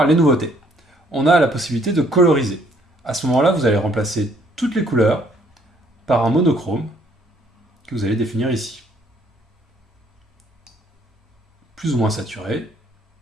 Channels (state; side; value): normal; both; correlation 0.64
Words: les nouveautés. On a la possibilité de coloriser. À ce moment-là, vous allez remplacer toutes les couleurs par un monochrome que vous allez définir ici. Plus ou moins saturé,